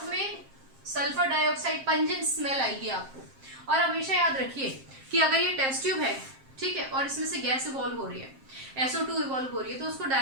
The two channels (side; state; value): left; late; 7.5 ms